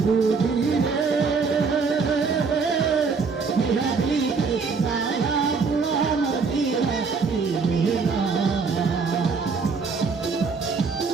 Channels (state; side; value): quieter; left; 4.9 dB